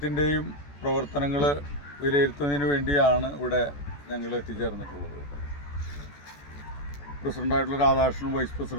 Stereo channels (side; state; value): right; late; 14 ms